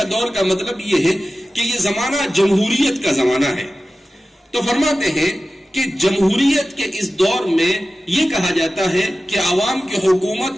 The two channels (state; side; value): normal; both; correlation 0.95